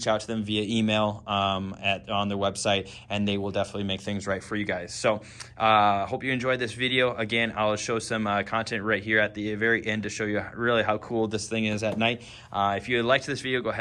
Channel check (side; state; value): both; identical; correlation 1.00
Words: out to them via email on their website, and they will definitely make things right for you guys. So hope you enjoyed this video. Again, I'll show some content right here at the very end to show you really how cool this thing is at night. If you liked this video, go